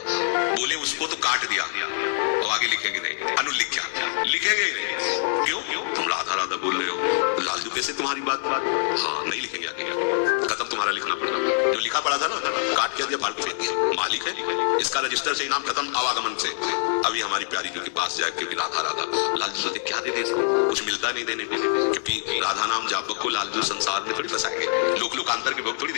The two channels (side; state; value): right; silent; 62 dB below the other